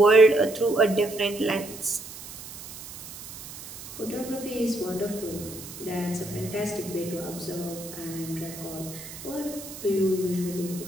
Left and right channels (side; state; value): right; noise; hiss, 13 dB below the sound